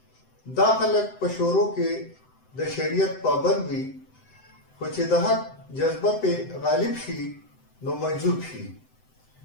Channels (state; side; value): late; right; 7.8 ms